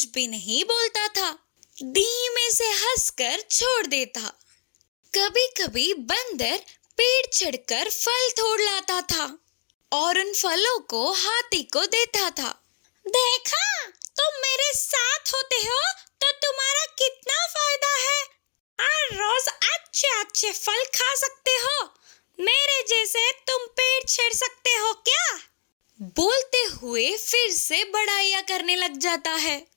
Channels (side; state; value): right; silent; digital silence